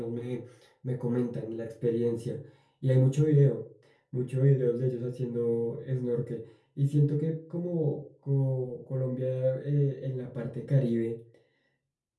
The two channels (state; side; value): identical; both; correlation 1.00